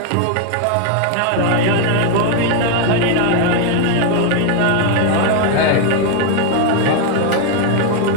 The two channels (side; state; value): both; different; correlation 0.01